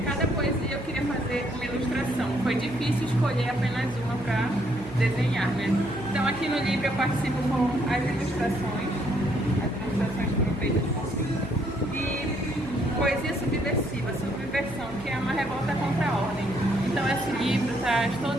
poesia eu queria fazer uma ilustração. Foi difícil escolher apenas uma para desenhar, né? Então aqui no livro eu participo com as ilustrações foram feitas por mim. E poesia subversiva, subversão, que é uma revolta contra a ordem. Então esse livro traz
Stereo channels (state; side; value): noise; right; hum, 15 dB below the sound